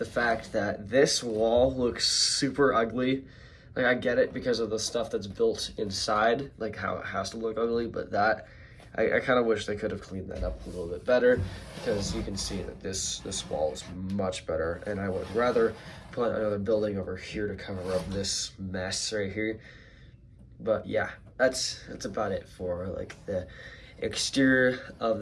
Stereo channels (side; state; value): both; identical; correlation 1.00